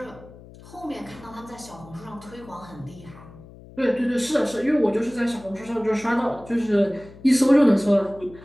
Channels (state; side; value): noise; left; hum, 20 dB below the sound